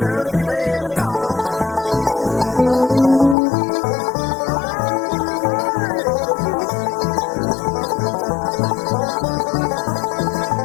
to feed him with a corn.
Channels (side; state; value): right; drops out; at 3.4 s